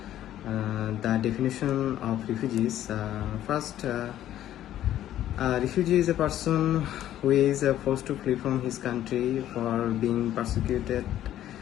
definition of refugees. First, a refugee is a person who is forced to flee from his country for being persecuted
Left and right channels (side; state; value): right; quieter; 12.3 dB